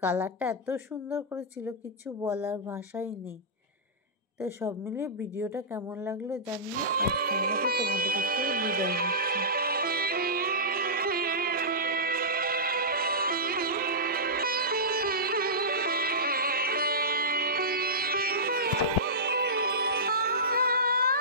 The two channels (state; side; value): normal; both; correlation -0.17